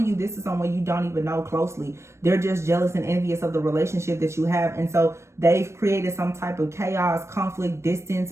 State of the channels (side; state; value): left; late; 0.13 ms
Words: you, this is someone you don't even know closely. They're just jealous and envious of the relationship that you have. And so they've created some type of chaos, conflict, distance,